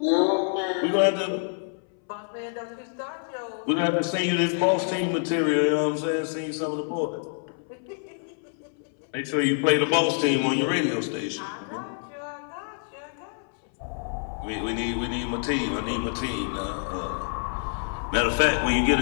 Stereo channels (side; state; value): right; silent; 60 dB below the other